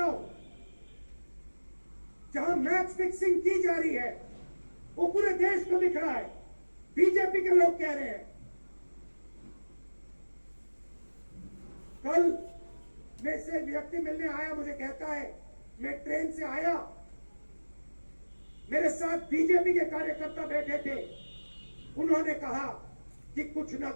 जहां मैच फिक्सिंग की जा रही है, वो पूरे देश को दिख रहा है। बीजेपी के लोग कह रहे हैं, कल में से व्यक्ति मिलने आया, मुझे कहता है मैं ट्रेन से आया, मेरे साथ बीजेपी के कार्यकर्ता बैठे थे, उन्होंने कहा कि कुछ ना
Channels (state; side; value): inverted; both; correlation -1.00